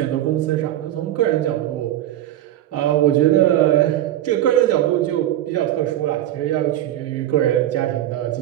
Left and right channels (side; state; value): left; quieter; 13.0 dB